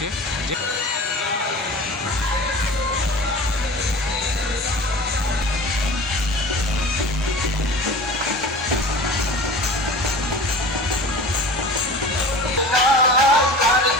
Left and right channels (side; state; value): both; normal; correlation 0.38